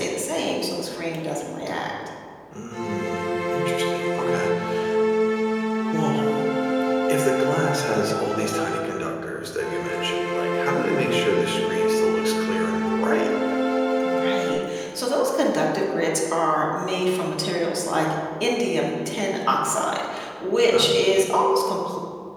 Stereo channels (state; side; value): identical; both; correlation 1.00